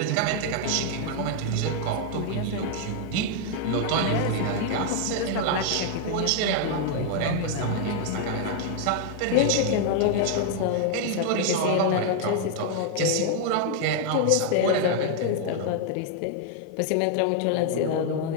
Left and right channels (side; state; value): both; different; correlation 0.00